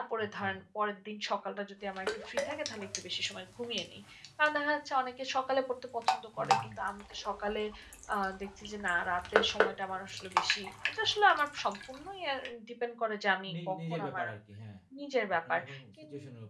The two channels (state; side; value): identical; both; correlation 1.00